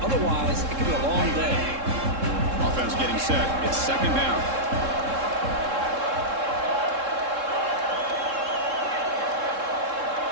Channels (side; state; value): left; late; 3.7 ms